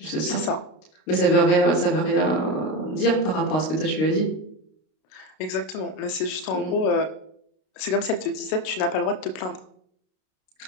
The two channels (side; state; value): right; late; 32 ms